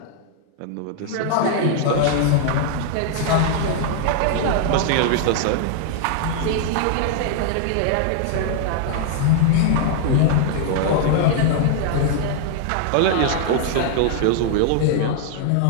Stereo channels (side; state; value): both; different; correlation 0.00